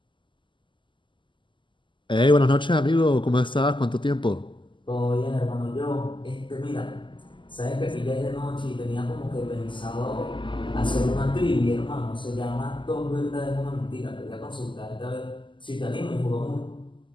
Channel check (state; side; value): late; right; 0.24 ms